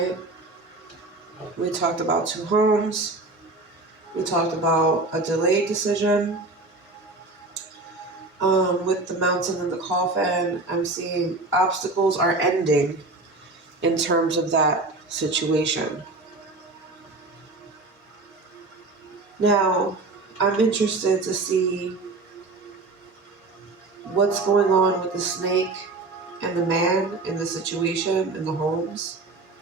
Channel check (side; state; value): left; quieter; 3.3 dB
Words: We talked about 2 homes. We talked about a delayed decision. With the mountain and the coffin, I'm seeing obstacles are ending in terms of that situation. Now, I'm interested to see what's going on with the snake and the man in the situation in the homes,